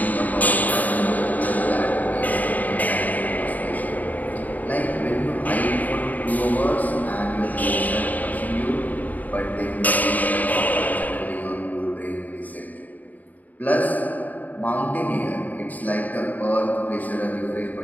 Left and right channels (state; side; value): late; right; 0.079 ms